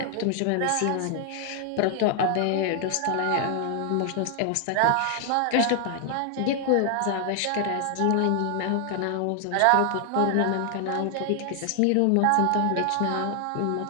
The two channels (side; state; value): both; different; correlation 0.00